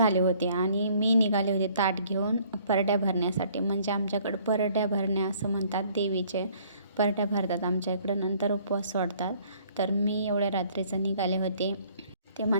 होते आणि मी निघाले होते ताट घेऊन परड्या भरण्यासाठी. म्हणजे आमच्याकडं परड्या भरण्या असं म्हणतात, देवीचे परड्या भरतात आमच्या इकडं, नंतर उपवास सोडतात. तर मी एवढ्या रात्रीचं निघाले होते. ते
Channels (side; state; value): both; inverted; correlation -0.59